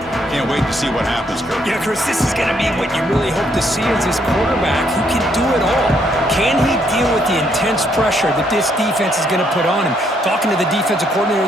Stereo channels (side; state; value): both; normal; correlation 0.72